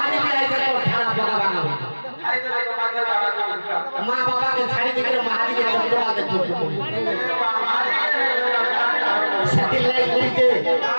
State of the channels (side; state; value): both; inverted; correlation -1.00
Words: भी आई तो खाना पका बना मां बाबा के छाड़ी देकर महानी के चंद्रमा के छोड़ सती लाई कोई के